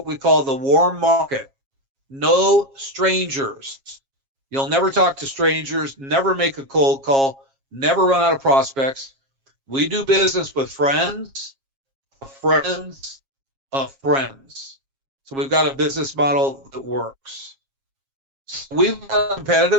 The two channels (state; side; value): late; left; 7.4 ms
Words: we call the warm market. No strangers. You'll never talk to strangers, never make a cold call, never run out of prospects. We do business with friends of friends of friends. So we've got a business model that works. So we've got a